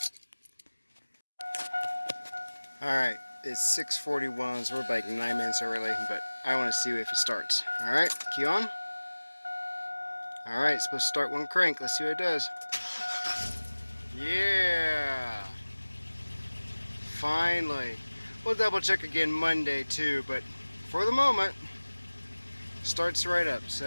Alright, it's 6:41, so we're like 9 minutes early, but I want to see if it starts. Alright, key on. Alright, it's supposed to start one crank. Let's see what it does. Yeah! Finally. We'll double check again Monday too, but for the moment, starts right up.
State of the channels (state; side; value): inverted; both; correlation -1.00